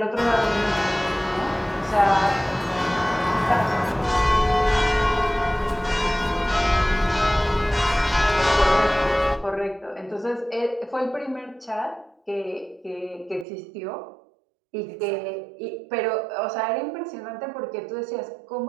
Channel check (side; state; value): left; drops out; at 13.5 s